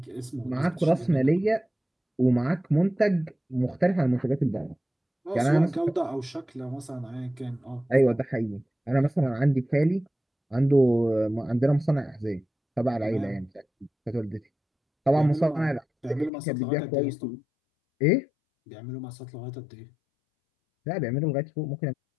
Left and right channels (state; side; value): drops out; right; at 16.3 s